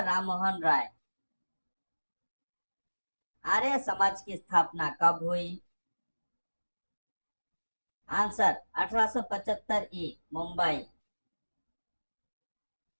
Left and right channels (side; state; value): both; inverted; correlation -1.00